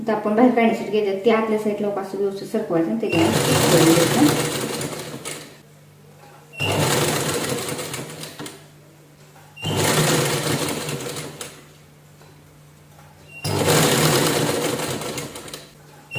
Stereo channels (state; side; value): identical; both; correlation 1.00